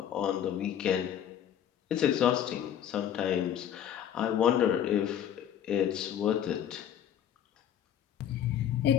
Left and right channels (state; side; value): quieter; right; 9.9 dB